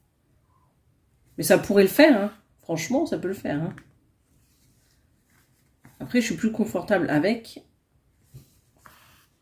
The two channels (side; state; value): both; identical; correlation 1.00